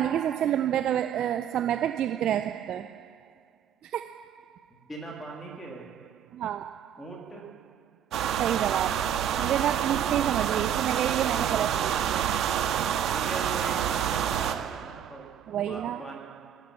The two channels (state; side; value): quieter; left; 9.4 dB